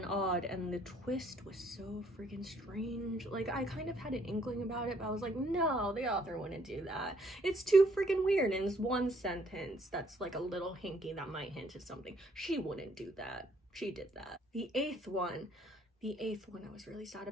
odd, and the twist was so freaking strange. Like, I kind of had an inkling about it, but I was like, no, the author wouldn't do that. It's too freaking weird, and it's 1 sentence that's like a little hinky that might hint at something. She wouldn't do that. She did that. The eighth one I was really sad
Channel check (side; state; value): both; normal; correlation 0.66